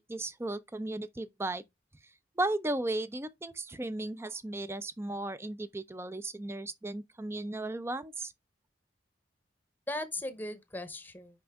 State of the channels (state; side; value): normal; both; correlation 0.68